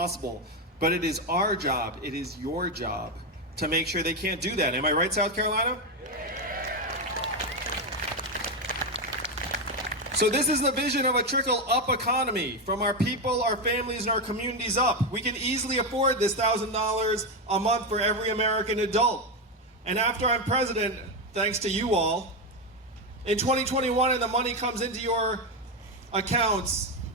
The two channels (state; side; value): normal; both; correlation 0.09